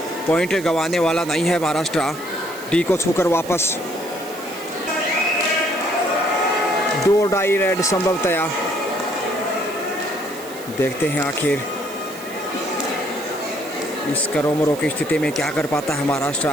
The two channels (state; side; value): noise; right; hiss, 16 dB below the sound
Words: पॉइंट गंवाने वाला नहीं है महाराष्ट्र। डी को छूकर वापस। 2 डाई रेड संभवतया। देखते हैं आखिर इस करोमरो की स्थिति में क्या कर पाता है